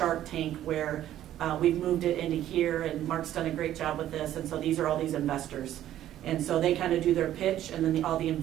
Tank where we've moved it into here, and Mark's done a great job with this, and so these are all these investors. And so they kind of do their pitch, and then all the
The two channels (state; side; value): quieter; left; 12.4 dB